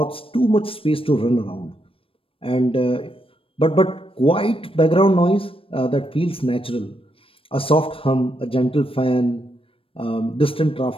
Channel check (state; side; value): late; right; 0.26 ms